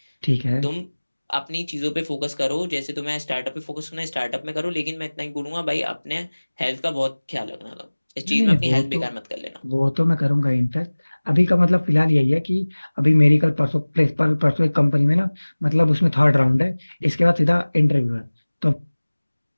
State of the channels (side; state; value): both; inverted; correlation -1.00